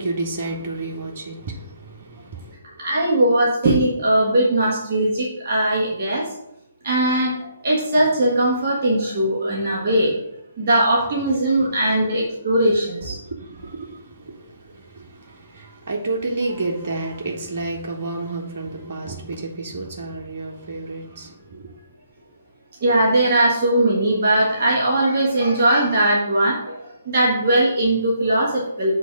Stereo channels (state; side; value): inverted; both; correlation -0.72